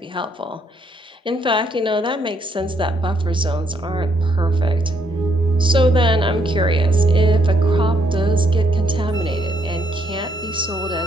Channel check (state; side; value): normal; both; correlation 0.72